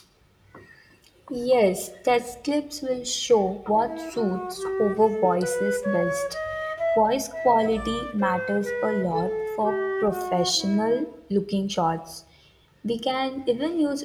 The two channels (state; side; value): identical; both; correlation 1.00